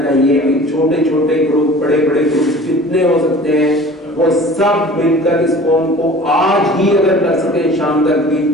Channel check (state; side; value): normal; both; correlation 0.44